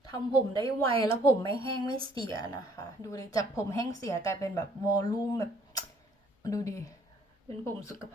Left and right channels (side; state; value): both; normal; correlation 0.61